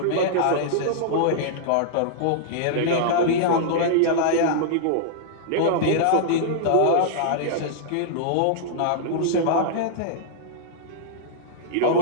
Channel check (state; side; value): different; both; correlation -0.02